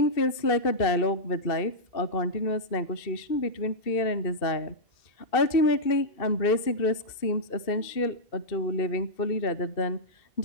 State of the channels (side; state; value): right; late; 2.6 ms